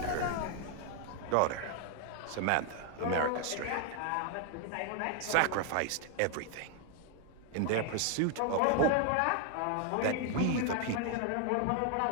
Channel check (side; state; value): both; different; correlation 0.00